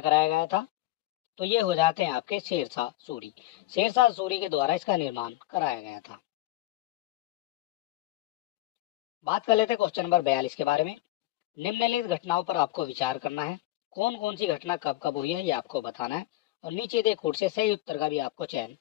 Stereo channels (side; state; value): right; quieter; 16.9 dB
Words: गया था? तो ये हो जाते हैं आपके शेरशाह सूरी। शेरशाह सूरी के द्वारा इसका निर्माण कराया गया था। बात कर लेते हैं क्वेश्चन नंबर 42 के बारे में। निम्नलिखित घटनाओं पर आपको विचार करना है। कौन कौन सी घटना कब कब हुई है, ये आपको बताना है, और नीचे दे कोड से सही उत्तर का भी आपको चयन